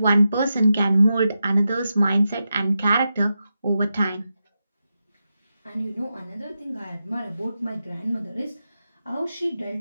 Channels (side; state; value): both; inverted; correlation -0.89